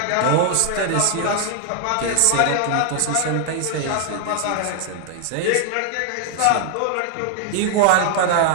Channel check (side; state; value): both; different; correlation 0.00